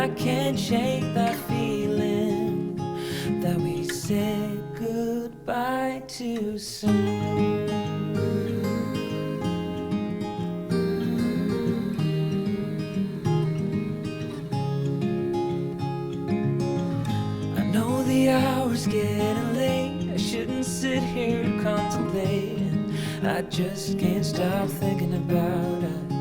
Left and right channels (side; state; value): both; identical; correlation 1.00